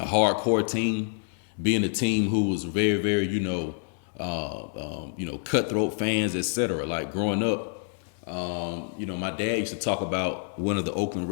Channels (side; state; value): right; silent; digital silence